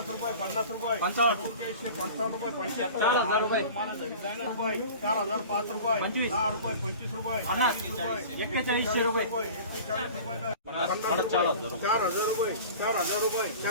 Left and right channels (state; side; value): inverted; both; correlation -0.39